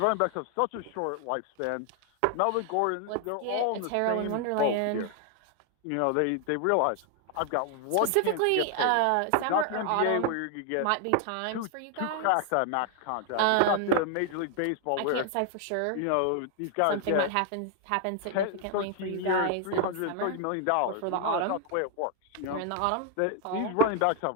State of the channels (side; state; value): both; different; correlation 0.00